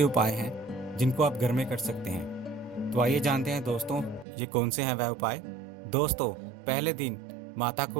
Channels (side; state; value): left; drops out; at 4.2 s